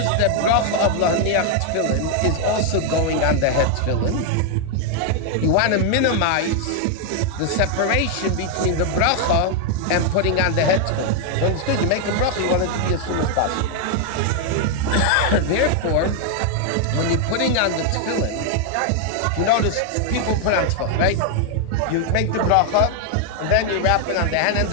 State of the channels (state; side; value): different; both; correlation 0.00